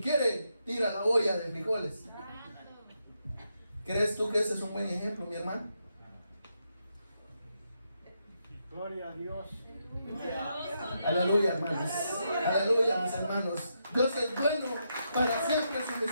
tira la olla de frijoles. ¿Crees tú que ese es un buen ejemplo, mi hermano? Gloria a Dios. Aleluya, hermanos. Aleluya, mis hermanos. Dios es bueno, para siempre su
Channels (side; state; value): both; inverted; correlation -0.81